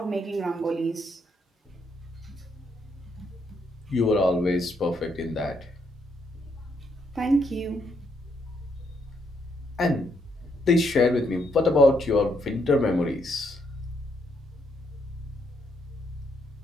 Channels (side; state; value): both; normal; correlation 0.75